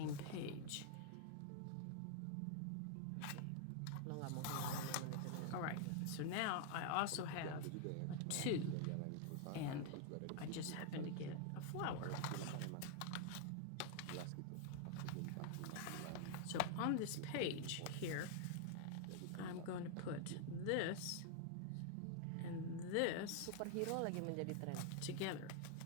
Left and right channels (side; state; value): both; different; correlation 0.00